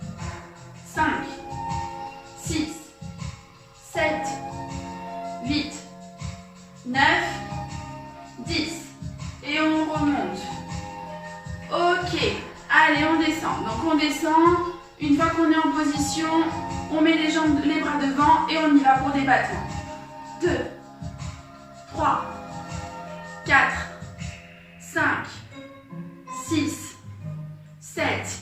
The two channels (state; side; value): identical; both; correlation 1.00